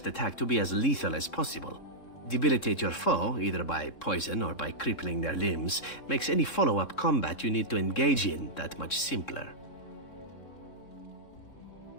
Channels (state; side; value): late; right; 3.7 ms